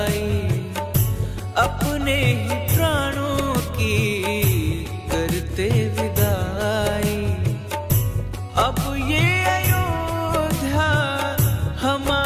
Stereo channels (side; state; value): both; identical; correlation 1.00